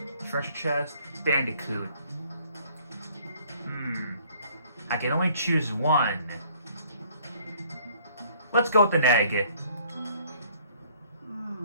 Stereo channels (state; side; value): inverted; both; correlation -0.59